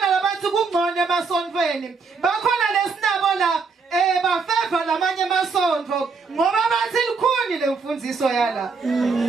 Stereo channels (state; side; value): quieter; left; 4.8 dB